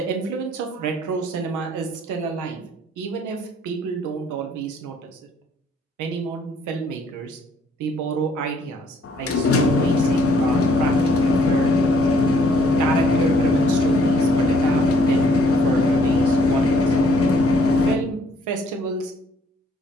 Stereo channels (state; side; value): normal; both; correlation 0.64